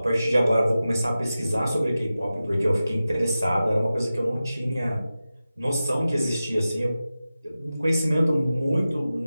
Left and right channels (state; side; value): inverted; both; correlation -0.94